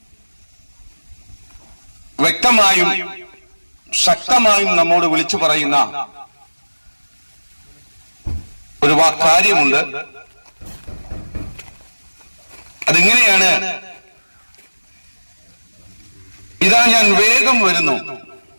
വ്യക്തമായും ശക്തമായും നമ്മോട് വിളിച്ചു പറയുന്ന ഒരു കാര്യമുണ്ട്. അതിങ്ങനെയാണ്: ഇതാ ഞാൻ വേഗം വരുന്നു,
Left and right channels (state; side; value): inverted; both; correlation -1.00